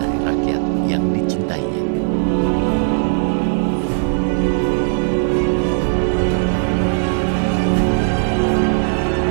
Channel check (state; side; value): silent; left; digital silence